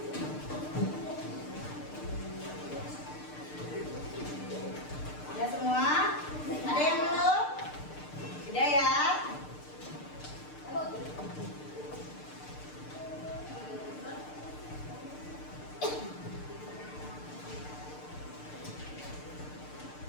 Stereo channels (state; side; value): late; right; 6.7 ms